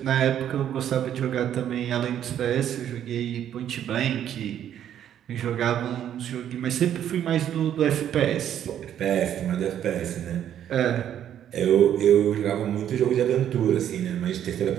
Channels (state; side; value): quieter; left; 10.3 dB